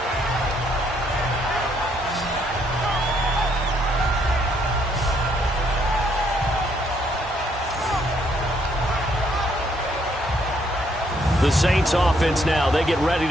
The Saints offense now, they get ready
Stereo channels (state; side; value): normal; both; correlation 0.70